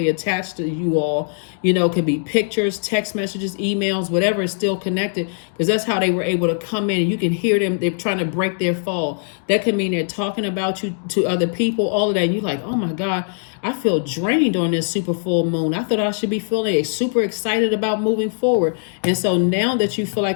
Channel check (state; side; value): silent; right; digital silence